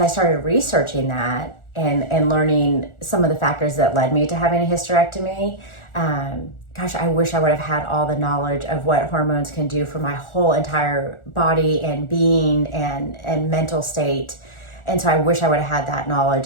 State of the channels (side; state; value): right; late; 1.4 ms